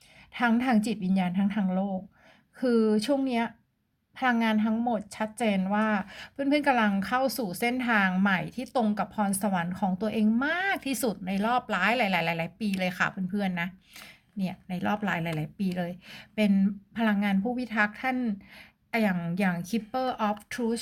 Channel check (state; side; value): identical; both; correlation 1.00